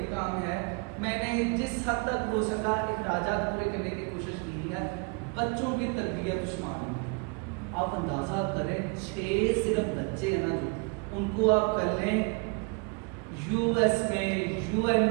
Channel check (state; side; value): quieter; left; 32.4 dB